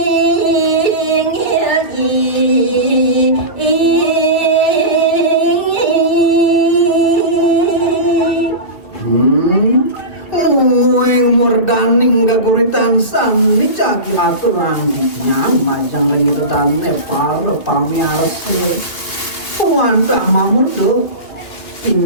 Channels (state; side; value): late; right; 2.6 ms